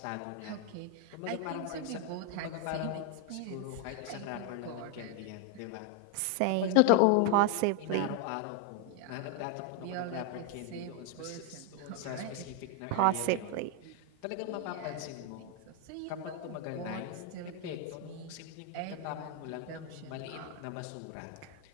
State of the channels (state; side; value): different; both; correlation 0.01